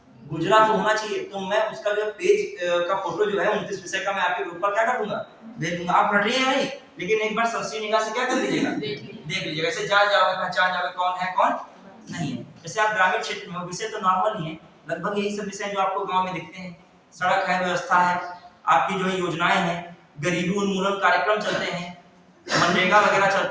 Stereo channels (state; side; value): identical; both; correlation 1.00